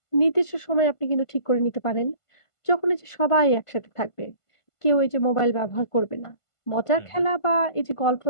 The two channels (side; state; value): right; late; 1.5 ms